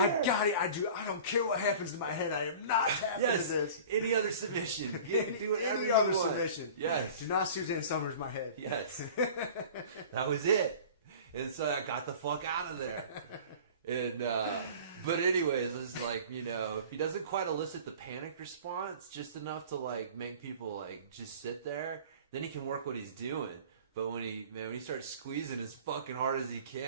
here. I got it. I don't care what happens to my head. I am not tapping to this. Any other submission. You can do whatever Any you other want. submission. Yes. Do not Suzanne Summers my head. Yes. That was it. And so I got the fuck out of there. And but anyways, it's like, you know, if he doesn't quite elicit the panic response just enough to like make people like just sit there, then he can work what he's doing. But when he starts squeezing as fucking hard as he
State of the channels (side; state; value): both; inverted; correlation -0.42